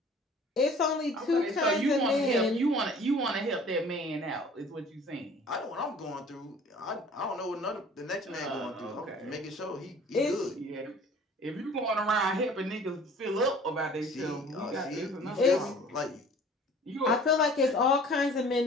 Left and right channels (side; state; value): both; normal; correlation 0.49